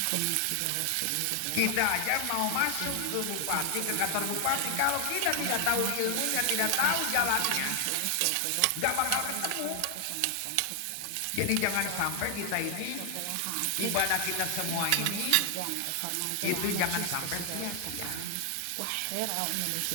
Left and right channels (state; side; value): different; both; correlation 0.00